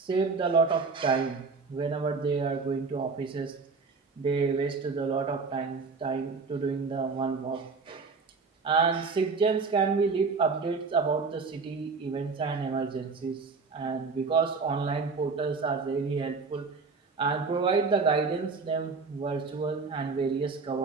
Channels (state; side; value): quieter; left; 4.6 dB